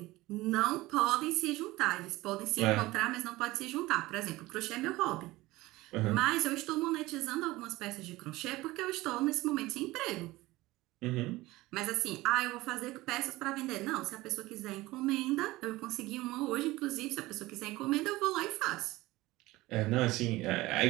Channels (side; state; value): left; quieter; 19.1 dB